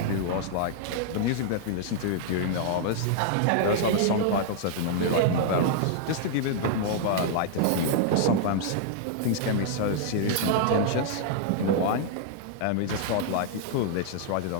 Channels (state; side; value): different; both; correlation -0.01